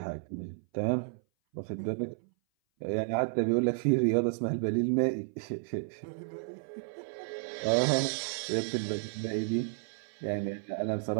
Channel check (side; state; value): left; silent; 56 dB below the other